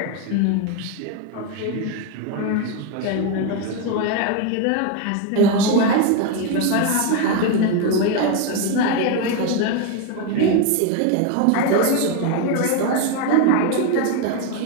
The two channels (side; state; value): both; different; correlation 0.02